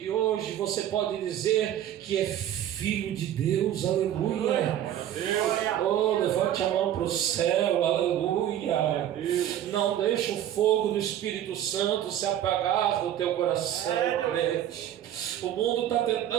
hoje você pode dizer que é filho de Deus, aleluia. Levante a mão para o céu, aleluia. Não deixe o fogo do Espírito Santo se apagar do teu coração, crente. O mundo está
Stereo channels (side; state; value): left; quieter; 11.4 dB